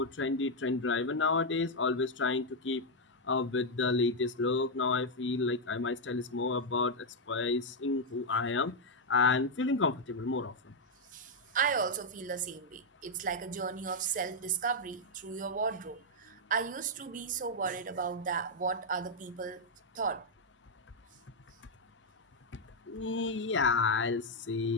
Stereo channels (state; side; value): normal; both; correlation 0.00